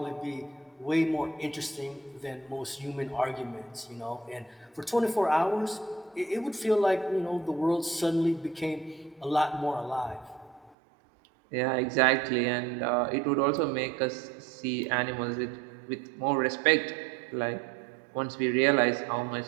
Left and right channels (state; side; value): drops out; left; at 10.8 s